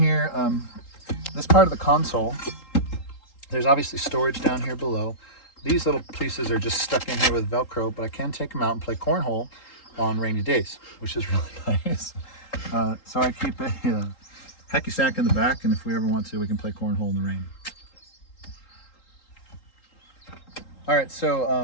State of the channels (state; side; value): late; right; 3.8 ms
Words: this part of the console, there's obviously storage down here below. These little pieces are just stuck in here with Velcro, but I can take them out and play cornhole on rainy days, which is really nice. So I keep a hacky sack in the back, and if we ever want to, we can play cornhole in the rain. All right,